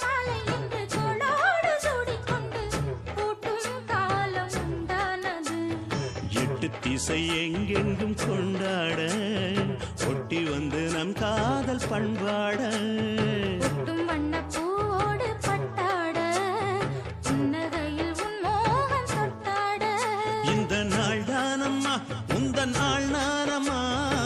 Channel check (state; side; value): identical; both; correlation 1.00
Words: திசை எங்கெங்கும் கொண்டாட ஒட்டி வந்து நம் காதல் பண்பாட வண்ணப்பூவோடு பட்டாட புன்னகையில் உன் மோகம் தொட்டாட இந்த நாள் தானம்மா உந்த நாள் நானம்மா